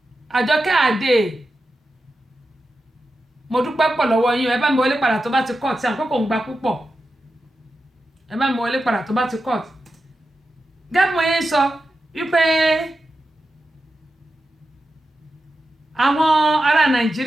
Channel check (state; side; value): normal; both; correlation 0.91